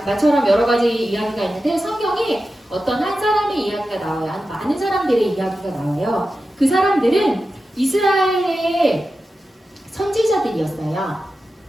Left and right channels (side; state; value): both; normal; correlation 0.92